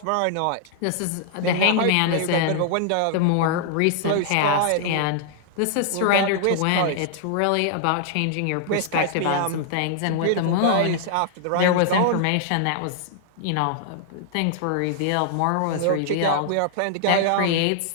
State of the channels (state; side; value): different; both; correlation -0.01